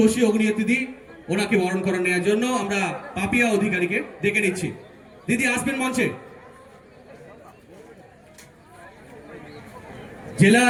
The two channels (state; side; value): identical; both; correlation 1.00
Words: অগ্নিয়ত দিদি, ওনাকে বরণ করে নেওয়ার জন্য আমরা পাপিয়া অধিকারীকে ডেকে নিচ্ছি। দিদি আসবেন মঞ্চে।